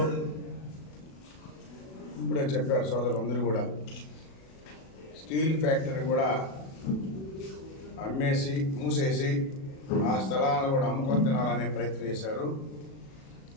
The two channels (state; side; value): late; right; 37 ms